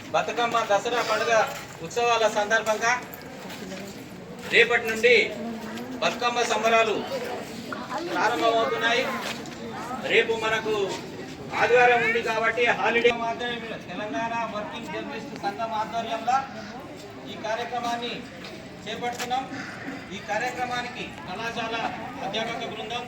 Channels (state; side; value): identical; both; correlation 1.00